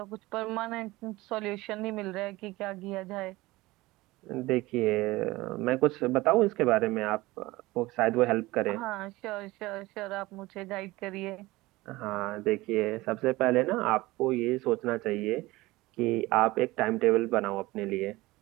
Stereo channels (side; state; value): left; quieter; 19.9 dB